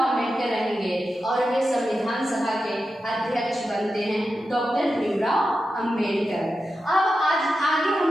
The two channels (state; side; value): normal; both; correlation 0.90